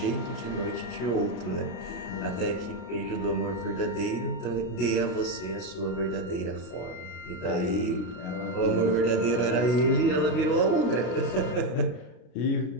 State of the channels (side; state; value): right; late; 32 ms